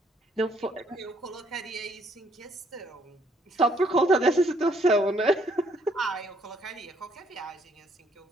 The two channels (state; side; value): normal; both; correlation 0.68